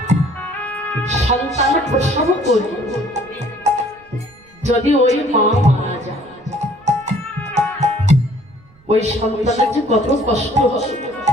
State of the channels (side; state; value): right; noise; rumble, 29 dB below the sound